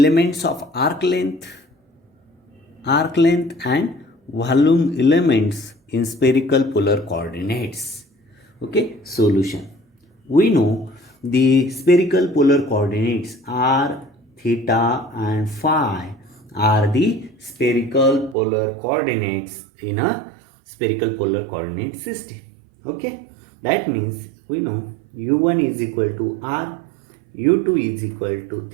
of arc length and volume elements in spherical polar coordinates. Okay, solution. We know the spherical polar coordinates are theta and phi are the spherical polar coordinates in a spherical polar coordinate system. Okay, that means we know u1 is equal to r, u2 is equal to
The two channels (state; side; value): drops out; left; at 18.4 s